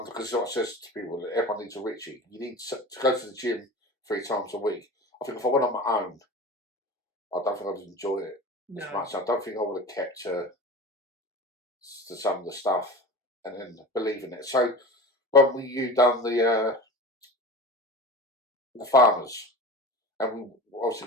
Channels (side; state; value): both; normal; correlation 0.32